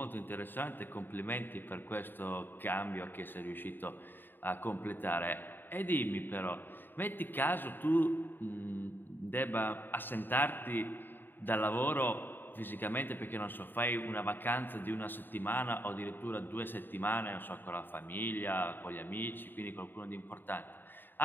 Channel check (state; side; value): late; right; 0.093 ms